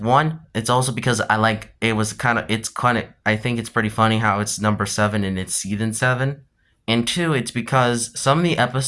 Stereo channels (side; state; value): both; identical; correlation 1.00